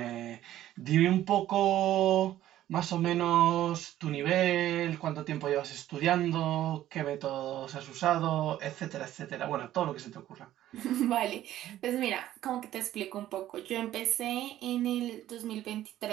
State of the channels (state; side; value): quieter; left; 13.2 dB